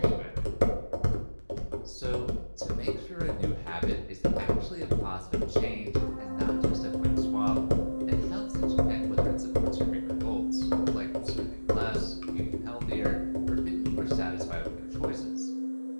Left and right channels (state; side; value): inverted; both; correlation -1.00